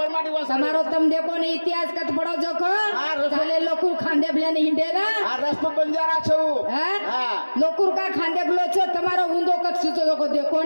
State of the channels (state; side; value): inverted; both; correlation -1.00